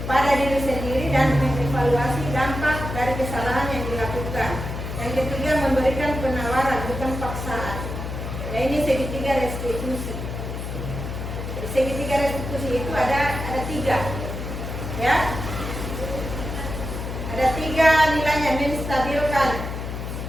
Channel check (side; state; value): left; noise; hum, 6 dB below the sound